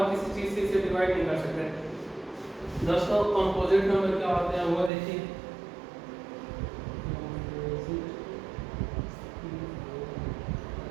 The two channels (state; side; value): drops out; left; at 4.9 s